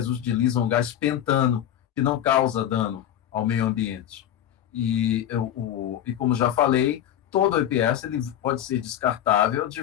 utilizam gás pentano, que não causa dano ao meio ambiente. E como já falei, todo o EPS ele pode ser descartável de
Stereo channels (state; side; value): quieter; right; 11.0 dB